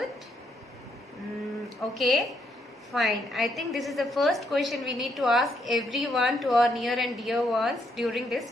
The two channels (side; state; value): both; normal; correlation 0.75